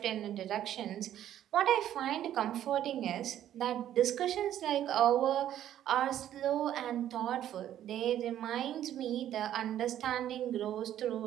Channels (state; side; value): quieter; left; 11.5 dB